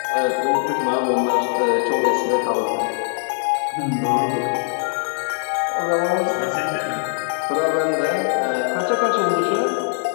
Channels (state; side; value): silent; right; 65 dB below the other